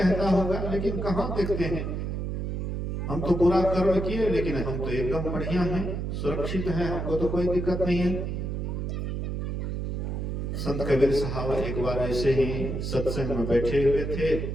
होगा। लेकिन कहाँ देखते हैं, हम तो बुरा कर्म किए लेकिन हम तो एकदम बढ़िया हैं, सुरक्षित हैं, हमको तो कोई दिक्कत नहीं है। संत कबीर साहब एक बार ऐसे ही सत्संग में बैठे हुए थे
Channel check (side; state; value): right; noise; hum, 3 dB below the sound